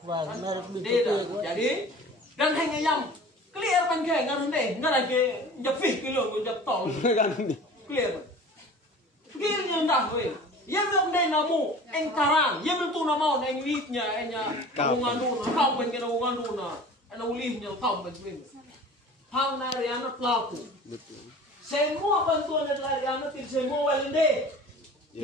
Jadi dan hanya yang clear pan ke ngaron deh, ngaran ke japih kilo jap tol. Kan Clear. Clear yang dah weh. Yang belum deh namu engkarang, yang belum tu nama eng witnya, enya bungan duna, kau pun kena bungan duna, ena ulihnya kau pun swing. Hang nari anak pelaku. Betul. Semua bantuan dari anak tidak semua walende.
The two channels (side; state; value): both; normal; correlation 0.41